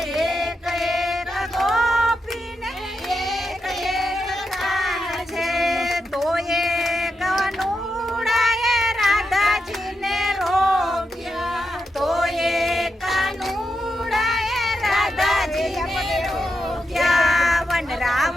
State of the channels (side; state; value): both; normal; correlation 0.85